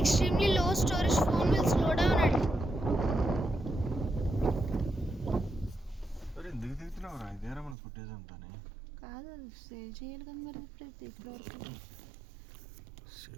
low storage phone will slow down at. అరే ఎందుకు దిగుతున్నావురా? ఇదేరా మన ఫుటేజ్ అంతానే. కాదు, సేవ్ చేయాలి కదా మరి. ఇప్పుడు వరకు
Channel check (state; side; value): drops out; left; at 7.8 s